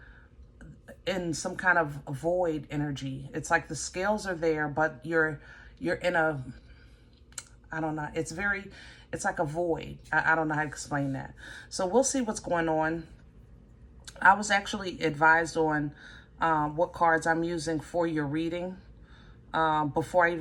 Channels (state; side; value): identical; both; correlation 1.00